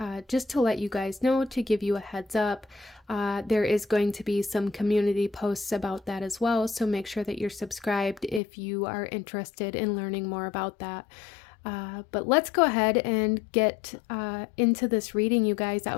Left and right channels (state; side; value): drops out; right; at 8.4 s